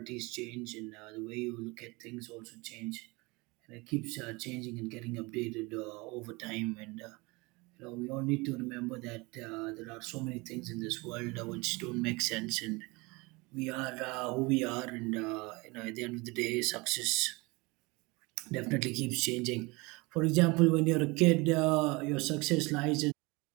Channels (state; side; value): quieter; left; 25.2 dB